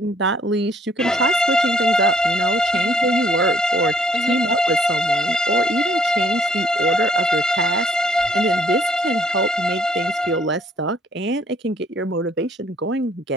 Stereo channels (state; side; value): normal; both; correlation 0.64